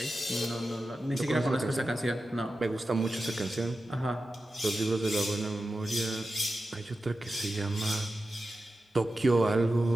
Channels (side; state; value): both; normal; correlation 0.92